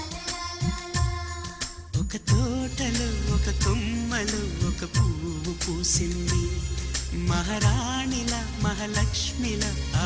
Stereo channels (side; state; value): both; identical; correlation 1.00